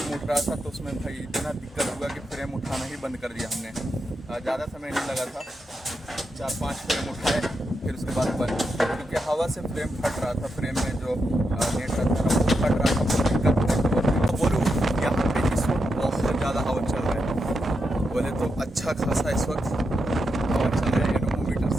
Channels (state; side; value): normal; both; correlation 0.85